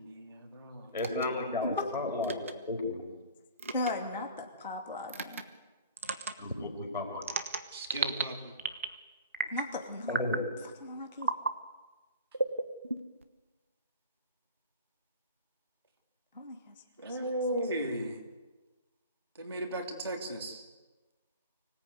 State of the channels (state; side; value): inverted; both; correlation -0.38